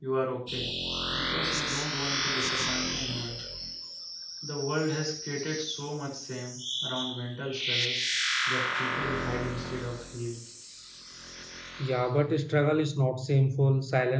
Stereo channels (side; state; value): both; identical; correlation 1.00